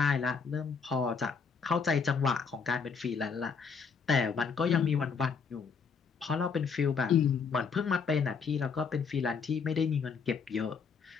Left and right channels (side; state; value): right; quieter; 5.6 dB